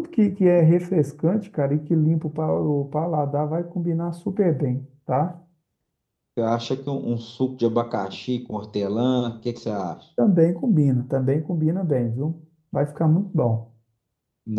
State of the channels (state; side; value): identical; both; correlation 1.00